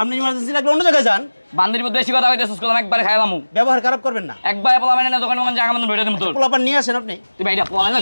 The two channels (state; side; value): inverted; both; correlation -1.00